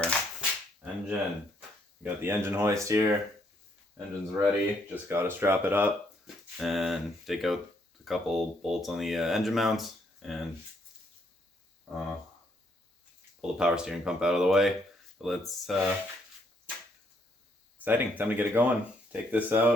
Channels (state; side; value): normal; both; correlation 0.71